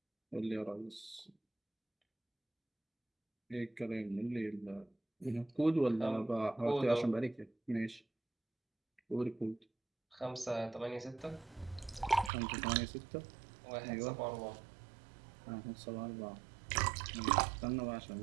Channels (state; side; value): drops out; left; at 12.3 s